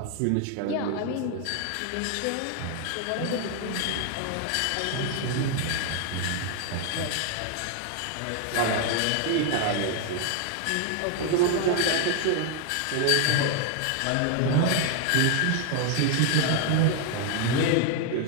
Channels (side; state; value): both; different; correlation 0.00